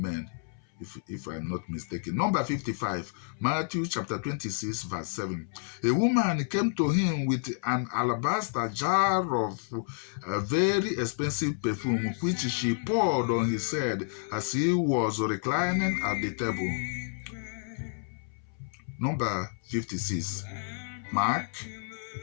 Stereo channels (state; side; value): silent; right; 58 dB below the other